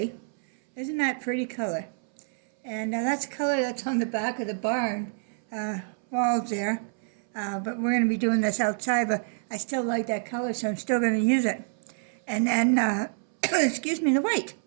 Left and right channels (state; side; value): silent; left; 60 dB below the other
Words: Isn't that pretty color? And that's the color that's on the back of the barn walls there. But we're going to be doing this outside, but I still like that color, so I'm still going to use it. And then, excuse me, the white.